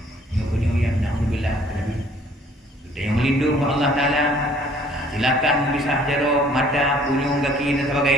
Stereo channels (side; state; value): both; normal; correlation 0.57